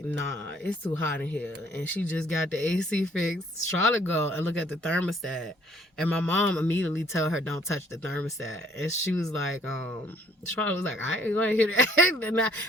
nah, it's too hot in here. And she just got the AC fixed. Charlotte go and look at the thermostat. And my mom immediately tell her, don't touch the thermostat. And she was like, Charlotte was like, I ain't gonna hear that.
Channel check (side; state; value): both; normal; correlation 0.62